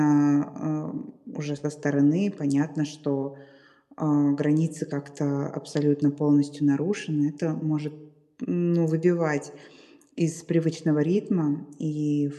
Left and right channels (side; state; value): both; identical; correlation 1.00